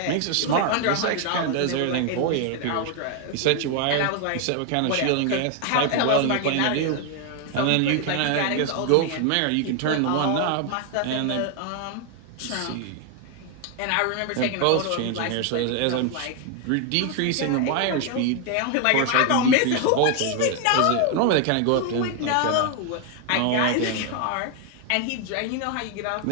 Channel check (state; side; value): different; both; correlation 0.01